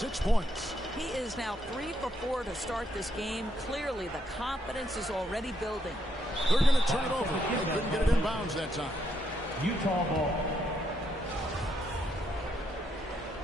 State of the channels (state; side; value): normal; both; correlation 0.76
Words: points. He is now 3 for 4 to start this game. Clearly, the confidence is already building. They're going to turn it over. They couldn't get it in bounds that time. Utah ball.